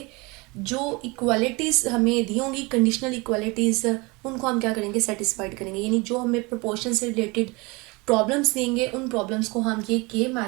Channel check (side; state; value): left; quieter; 26.0 dB